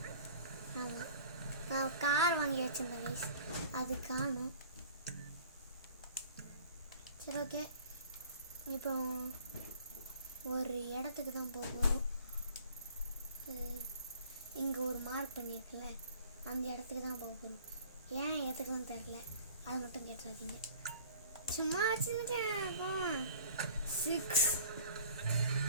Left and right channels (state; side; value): inverted; both; correlation -0.49